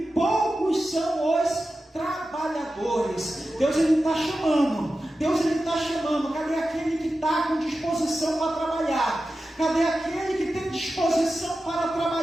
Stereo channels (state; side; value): normal; both; correlation 0.93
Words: poucos são os trabalhadores. Deus, Ele está chamando. Deus, Ele está chamando. Cadê aquele que está com disposição para trabalhar? Cadê aquele que tem disposição para